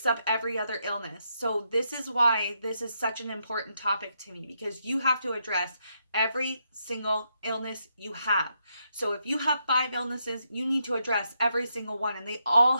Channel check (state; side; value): inverted; both; correlation -0.80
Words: up every other illness. So this is why this is such an important topic to me, because you have to address every single illness you have. So if you have 5 illnesses, you need to address every single one, and they all